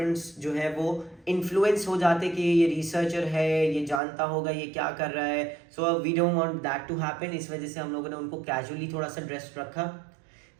जो है वो इन्फ्लुएंस हो जाते कि ये रिसर्चर है, ये जानता होगा ये क्या कर रहा है। So we don't want that to happen. इस वजह से हम लोगों ने उनको कैजुअली थोड़ा सा ड्रेस रखा।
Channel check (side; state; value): left; drops out; at 4.0 s